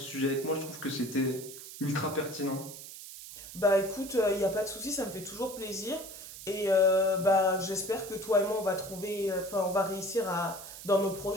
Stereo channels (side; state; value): right; noise; hiss, 13 dB below the sound